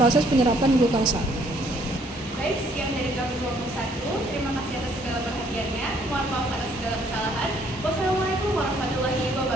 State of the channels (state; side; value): normal; both; correlation 0.65